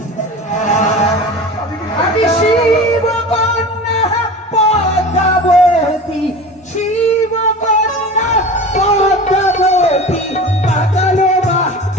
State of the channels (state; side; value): normal; both; correlation 0.34